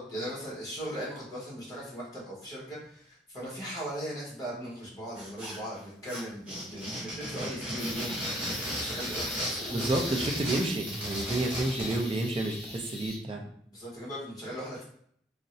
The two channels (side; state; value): both; normal; correlation 0.61